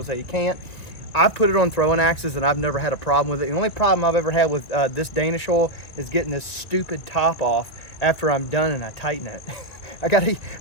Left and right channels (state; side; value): late; right; 1.9 ms